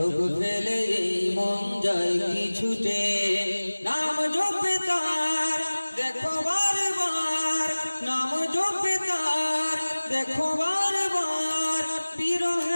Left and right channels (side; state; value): both; inverted; correlation -1.00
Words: ফেলে এই মন যায় কি ছুটে, নাম জপে তার দেখো বারবার, নাম জপে তার দেখো বারবার,